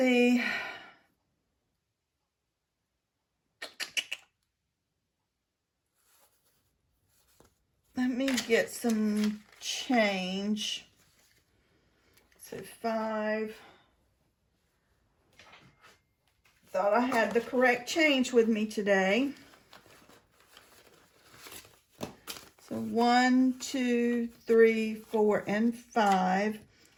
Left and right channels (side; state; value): both; identical; correlation 1.00